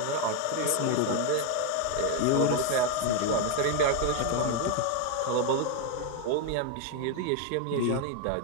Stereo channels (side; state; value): both; different; correlation 0.01